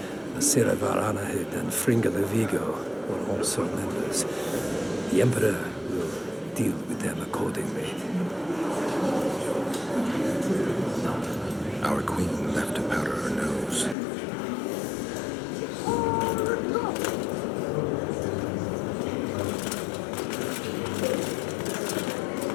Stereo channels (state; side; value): drops out; right; at 14.0 s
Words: Asira Varanahid and Fringa de Vigo, were also members. The Emperor will deal with them accordingly. Our queen left to powder her nose.